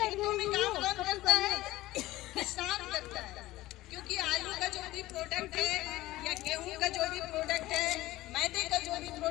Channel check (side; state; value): right; quieter; 17.1 dB